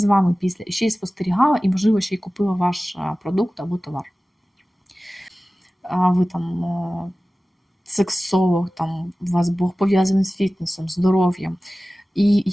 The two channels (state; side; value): normal; both; correlation 0.97